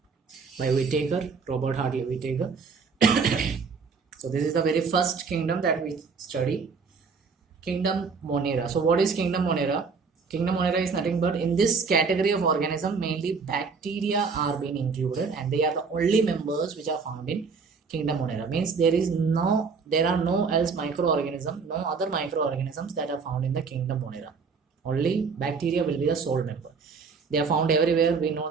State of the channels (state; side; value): quieter; left; 5.1 dB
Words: Whittaker, Robert Hartley Whittaker. So this is the very first kingdom that we study. Kingdom Monera. So what is Kingdom Monera? Kingdom Monera is nothing but in this category of organism, mainly bacteria are being included, and they are the only members which are found in Kingdom Monera. Means there are no else microorganism, no other microorganisms that are found in the Kingdom Monera. Only bacteria will be the sole member. They are found everywhere. We know